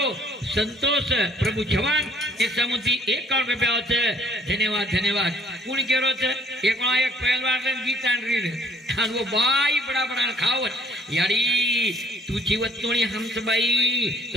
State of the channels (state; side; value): normal; both; correlation 0.60